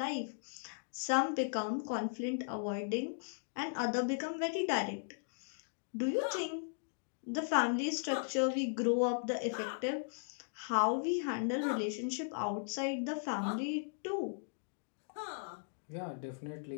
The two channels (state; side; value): silent; right; digital silence